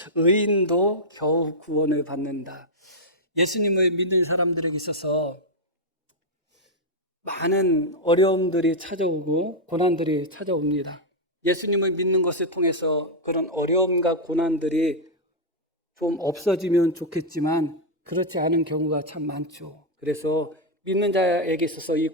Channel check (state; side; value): normal; both; correlation -0.02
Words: 의인도 겨우 구원을 받는다. 예수님을 믿는 사람들에게 있어서 많은 어려움들이 찾아오고 고난들이 찾아옵니다. 예수님을 믿는 것을 통해서 그런 어려움과 고난들이 좀 없어지면 좋겠지만 그렇지 않은 경우가 참 많죠. 그래서 믿는 자에게 있어서 이